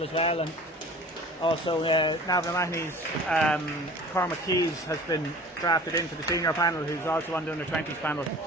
as well, and also Navan O'Mahony's Cormac Keys has been drafted into the senior panel, who's also on the under 20s panel.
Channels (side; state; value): both; normal; correlation 0.44